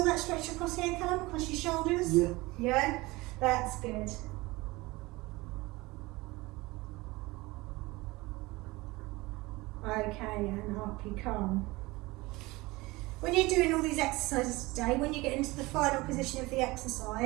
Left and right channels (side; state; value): left; quieter; 21.7 dB